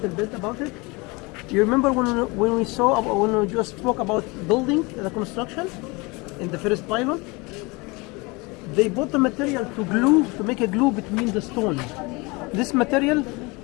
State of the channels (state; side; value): quieter; right; 26.0 dB